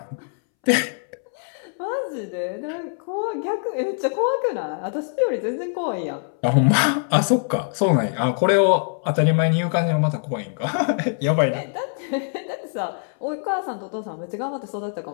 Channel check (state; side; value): silent; right; 63 dB below the other